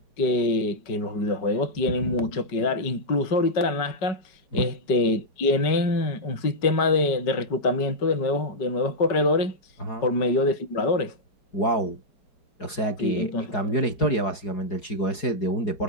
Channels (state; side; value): late; right; 4.8 ms